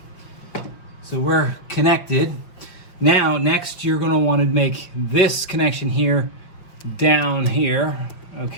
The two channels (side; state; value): right; late; 5.7 ms